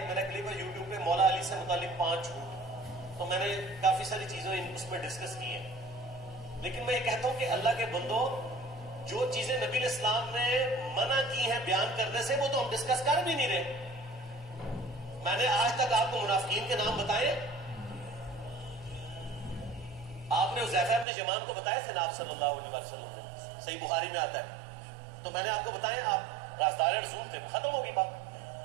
میرا کلپ ہے یوٹیوب پہ, مولا علی سے متعلق 5 جھوٹ, تو میں نے کافی ساری چیزیں اس میں ڈسکس کی ہیں. لیکن میں یہ کہتا ہوں کہ اللہ کے بندوں, جو چیزیں نبی علیہ السلام نے منع کی ہیں بیان کرنے سے وہ تو ہم ڈسکس کر بھی نہیں رہے. میں نے آج تک آپ کو منافقین کے نام بتائے, آپ نے حذیفہ ابن یمان کو بتایا تھے نا آپ صلی اللہ علیہ وسلم نے, صحیح بخاری میں آتا ہے. تو میں نے آپ کو بتایا آپ راستار رسول تھے, ختم ہوگی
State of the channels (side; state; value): left; drops out; at 21.1 s